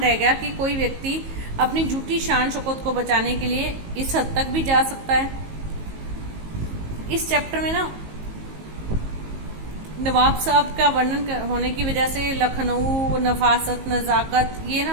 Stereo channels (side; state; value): left; late; 19 ms